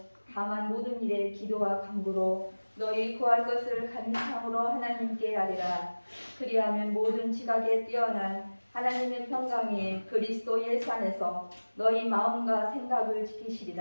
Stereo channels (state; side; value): inverted; both; correlation -1.00